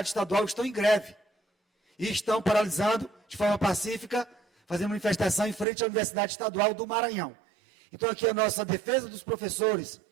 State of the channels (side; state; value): left; drops out; at 5.7 s